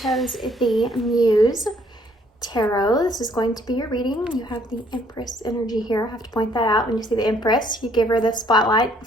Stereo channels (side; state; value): both; normal; correlation 0.64